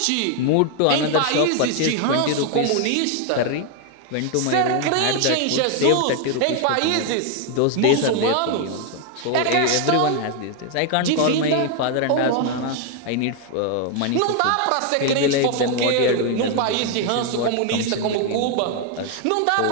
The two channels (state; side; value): different; both; correlation 0.01